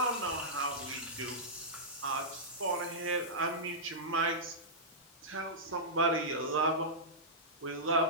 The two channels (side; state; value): both; normal; correlation -0.14